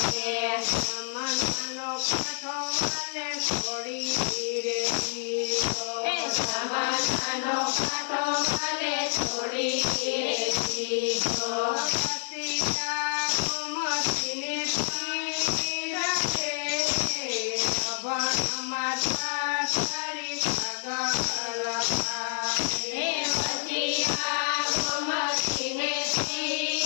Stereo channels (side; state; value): right; silent; digital silence